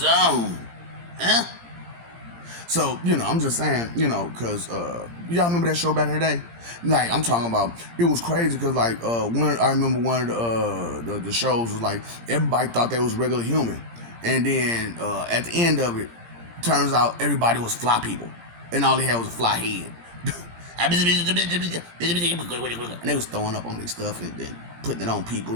Huh? So, I'm just saying, because y'all remember that show back in the day? Like, I'm talking about, it was crazy because, I remember one of the shows was like, everybody thought they was regular human. And then at the end of it, turns out everybody was fly people. And all they had was a fly head. And they was throwing up on their stuff and then putting it on people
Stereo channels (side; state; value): left; late; 17 ms